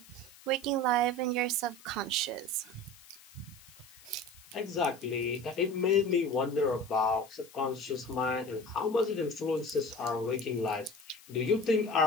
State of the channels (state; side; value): noise; left; hiss, 22 dB below the sound